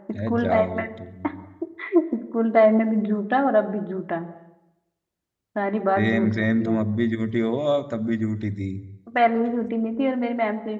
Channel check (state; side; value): identical; both; correlation 1.00